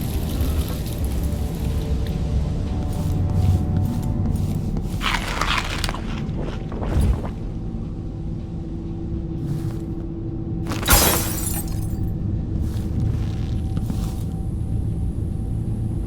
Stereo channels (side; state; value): both; identical; correlation 1.00